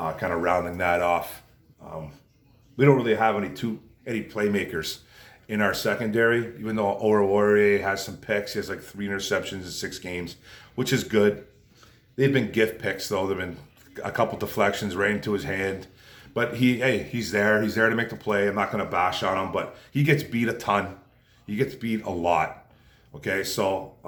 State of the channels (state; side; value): identical; both; correlation 1.00